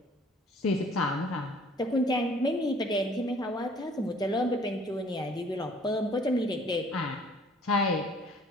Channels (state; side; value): normal; both; correlation 0.55